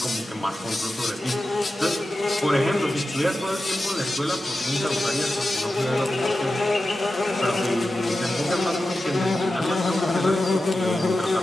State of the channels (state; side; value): normal; both; correlation 0.93